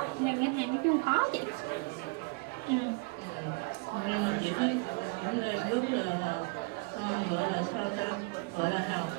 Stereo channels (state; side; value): quieter; left; 30.5 dB